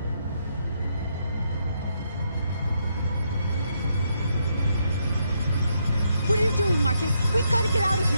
What are you doing, Marcus? We've got to get out of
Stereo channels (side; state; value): both; inverted; correlation -0.77